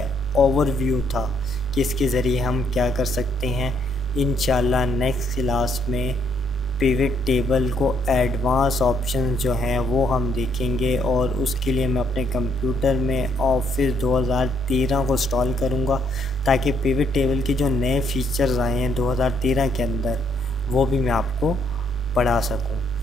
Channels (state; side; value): normal; both; correlation 0.71